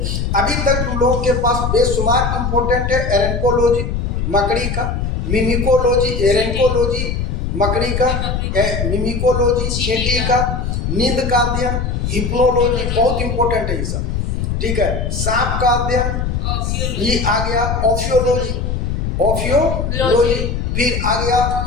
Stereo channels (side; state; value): left; noise; rumble, 1 dB below the sound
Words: अभी तक तुम लोगों के पास बेशुमार इंपॉर्टेंट है एरेंकोलॉजी मकड़ी का, मिमिकोलॉजी एरेंकोलॉजी मकड़ी का, मिमिकोलॉजी चींटी का, नींद का अध्ययन, हिप्नोलॉजी बहुत इंपॉर्टेंट है ये सब, ठीक है। सांप का अध्ययन, ये आ गया ओफियोलॉजी, ओफियोलॉजी। फिर आ गया